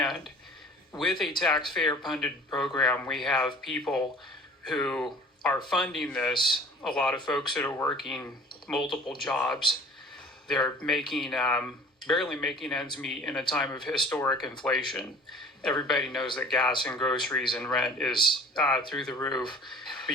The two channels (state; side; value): normal; both; correlation 0.47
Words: with a taxpayer-funded program, we have people who are funding this, a lot of folks that are working multiple jobs. They're making, barely making ends meet in a time of historic inflation. Everybody knows that gas and groceries and rent is through the roof. But